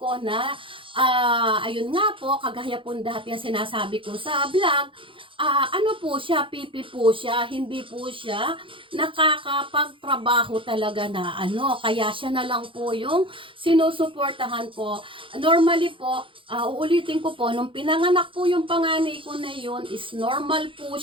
ko na, ayun nga po, kagaya po dati yung sinasabi ko sa vlog, ano po siya, pipi po siya, hindi po siya nakakapagtrabaho talaga na ano, kaya siya na lang po yung sinusuportahan ko. Normally po, uulitin ko po, nung pinanganak po yung panganay ko na yun, is normal po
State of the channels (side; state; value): left; late; 0.25 ms